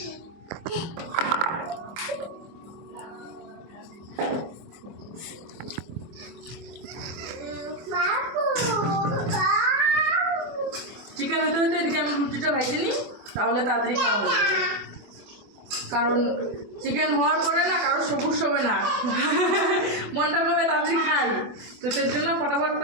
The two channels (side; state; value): left; late; 24 ms